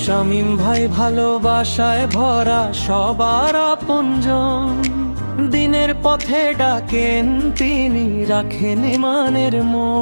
শামীম ভাই ভালোবাসায় ভরা সবার আপনজন, দিনের পথে ডাকেন তিনি রাখেন ইমানের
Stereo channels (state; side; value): inverted; both; correlation -1.00